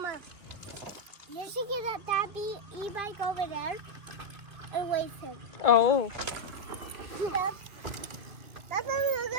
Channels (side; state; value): left; late; 2.8 ms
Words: you should get that e-bike over there and wait him. Oh. That's a